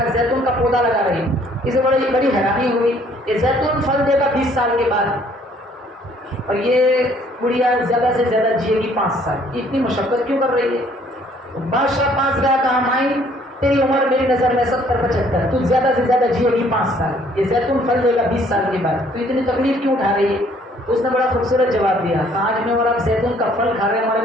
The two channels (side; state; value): both; normal; correlation 0.61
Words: जैतून का पौधा लगा रही, इसे बड़ी हैरानी हुई। ये जैतून फल देगा 20 साल के बाद, और ये गुड़िया ज्यादा से ज्यादा जिएगी 5 साल। इतनी मुशक्कत क्यों कर रही है? बादशाह पास गया, कहा माई तेरी उम्र मेरी नजर में 70-75, तू ज्यादा से ज्यादा जिएगी 5 साल, ये जैतून फल देगा 20 साल के बाद, तो इतनी तकलीफ क्यों उठा रही है? उसने बड़ा खूबसूरत जवाब दिया, आज मैं और आप जैतून का फल खा रहे हैं, हमारे